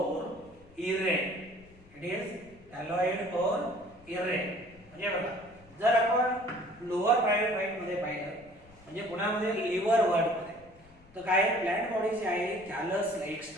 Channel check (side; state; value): left; noise; rumble, 25 dB below the sound